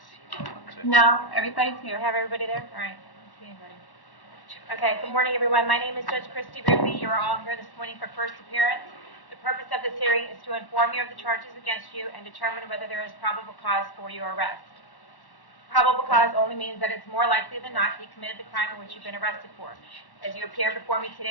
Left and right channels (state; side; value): late; right; 1.1 ms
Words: No, everybody's Do here. you have everybody there? All right. I don't see anybody. Okay, good morning, everyone. My name is Judge Christy Ruppe. You are all here this morning for first appearance. The purpose of this hearing is to inform you of the charges against you and determine whether there is probable cause for your arrest. Probable cause only means that it's more likely than not you committed the crime in which you've been arrested for. As you appear before me